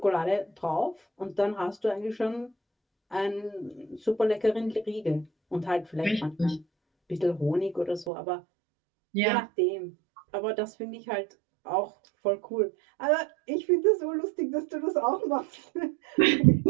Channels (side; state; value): left; drops out; at 8.1 s